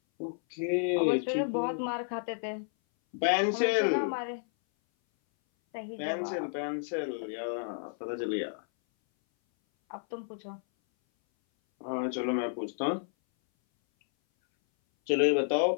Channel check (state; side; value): silent; right; 57 dB below the other